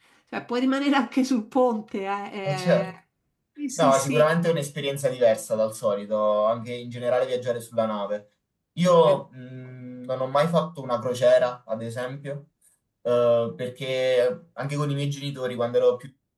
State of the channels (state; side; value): identical; both; correlation 1.00